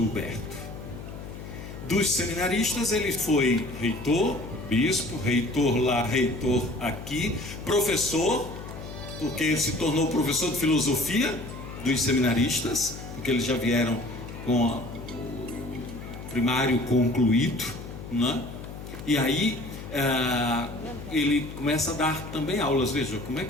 Huberto. Dos seminaristas ele foi reitor, bispo, reitor lá, reitor aqui, professor, porque ele se tornou professor de filosofia dos seminaristas, porque eles já vieram com o primário concluído, né? E aí ele começa a dar também aulas. Veja, como é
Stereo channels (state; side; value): noise; left; hum, 11 dB below the sound